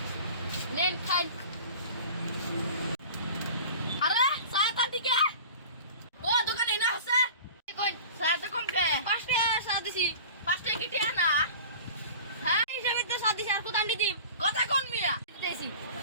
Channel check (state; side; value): inverted; both; correlation -0.39